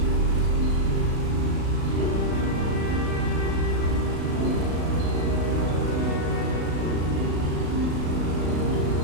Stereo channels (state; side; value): late; left; 36 ms